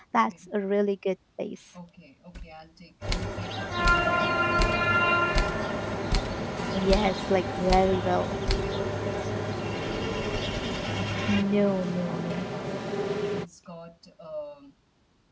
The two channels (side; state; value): both; identical; correlation 1.00